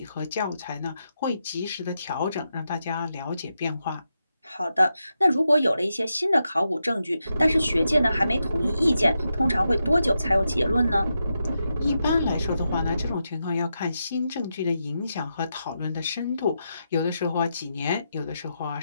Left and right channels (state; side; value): inverted; both; correlation -0.86